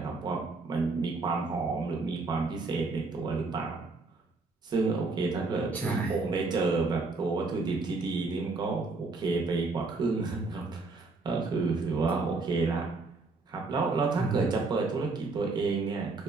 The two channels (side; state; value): left; quieter; 3.7 dB